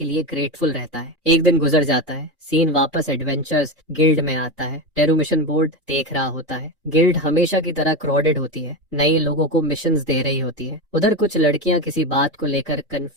लिए ग्रेटफुल रहता है। एक दिन गुजर जाता है। सीन वापस एडवेंचर्स गिल्ड में आता है। टेरू मिशन बोर्ड देख रहा होता है। गिल्ड हमेशा की तरह क्राउडेड होती है। नए लोगों को मिशंस दे रही होती है। उधर कुछ लड़कियां किसी बात को लेकर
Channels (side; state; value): both; normal; correlation 0.17